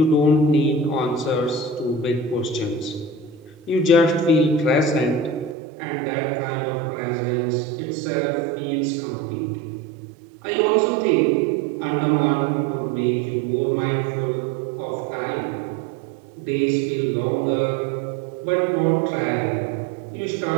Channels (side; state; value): left; drops out; at 5.6 s